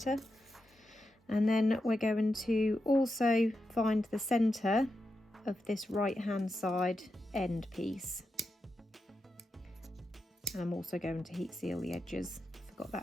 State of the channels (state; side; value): normal; both; correlation 0.88